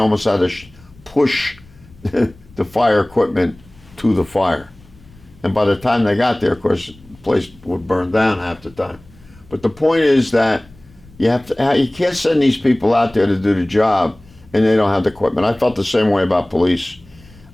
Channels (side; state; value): left; noise; rumble, 25 dB below the sound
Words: had to push the fire equipment to the fire. And by the time they got there, of course, the place would burn down half the time. But the point is that you can't send these people out there to do the job and they don't have the equipment. I felt the same way about police.